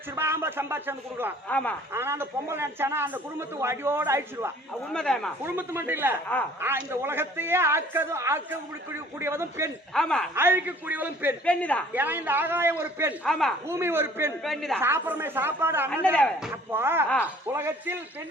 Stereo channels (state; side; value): normal; both; correlation 0.53